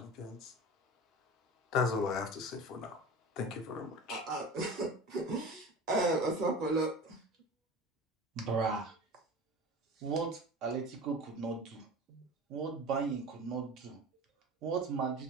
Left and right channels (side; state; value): both; normal; correlation 0.35